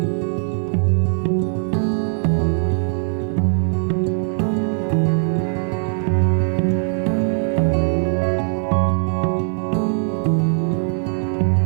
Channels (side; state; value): left; silent; 66 dB below the other